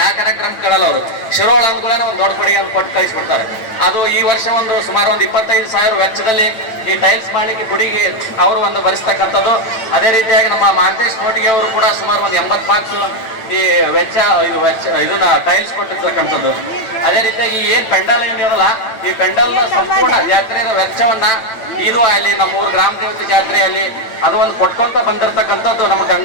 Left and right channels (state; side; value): late; right; 9.0 ms